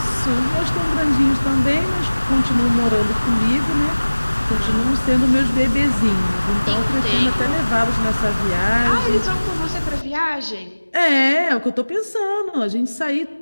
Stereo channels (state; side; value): inverted; both; correlation -1.00